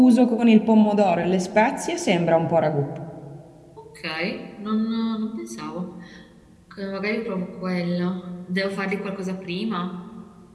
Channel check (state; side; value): identical; both; correlation 1.00